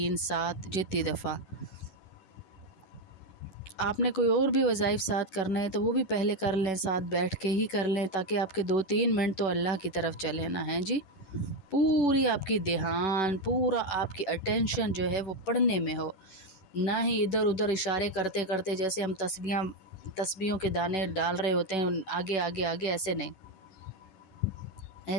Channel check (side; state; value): right; late; 10 ms